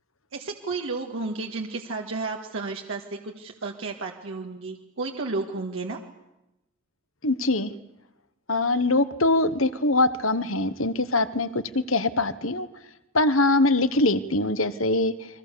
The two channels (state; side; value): normal; both; correlation -0.06